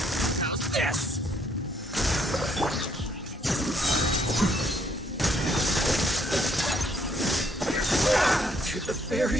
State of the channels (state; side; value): normal; both; correlation 0.69